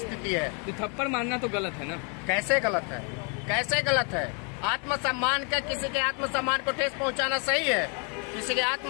है। तो थप्पड़ मारना तो गलत है ना? कैसे गलत है? कैसे गलत है? आत्मसम्मान का, किसी के आत्मसम्मान को ठेस पहुंचाना सही है? किसी के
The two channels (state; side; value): quieter; right; 36.7 dB